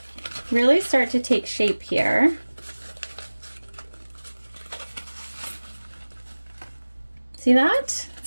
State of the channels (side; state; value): both; inverted; correlation -1.00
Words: really start to take shape here. See that?